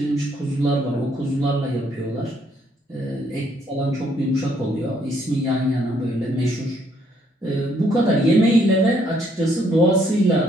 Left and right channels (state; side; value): normal; both; correlation 0.69